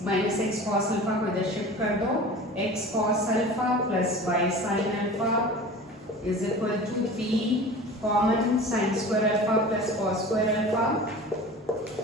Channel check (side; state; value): both; normal; correlation 0.38